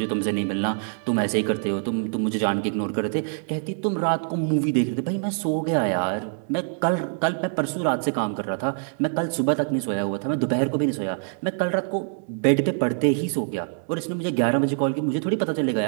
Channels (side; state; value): left; silent; 62 dB below the other